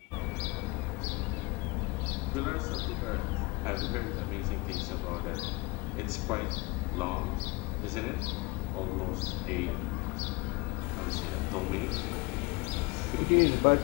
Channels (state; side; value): quieter; right; 25.6 dB